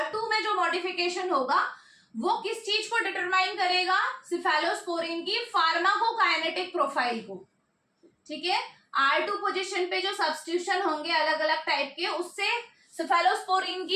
में जो मॉडिफिकेशन होगा वो किस चीज को डिटरमाइन करेगा? सिफेलोस्पोरिन की फार्माकोकाइनेटिक प्रोफाइल को, ठीक है। R2 पोजीशन पे जो सब्स्टिट्यूशन होंगे अलग अलग टाइप के, उससे सिफेलोस्पोरिन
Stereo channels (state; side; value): identical; both; correlation 1.00